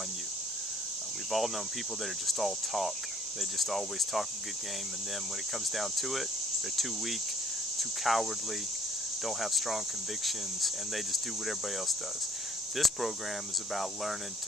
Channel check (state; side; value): normal; both; correlation 0.58